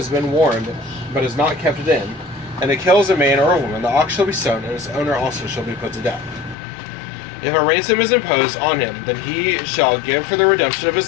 been warned, but has not kept it in, and it kills a man or a woman, the ox shall be stoned, and its owner also shall be put to death. If a ransom is imposed on him, then he shall give for the redemption of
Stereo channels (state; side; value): drops out; right; at 6.6 s